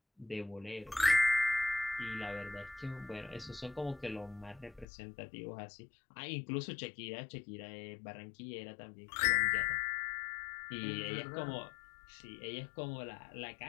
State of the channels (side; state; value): right; drops out; at 4.9 s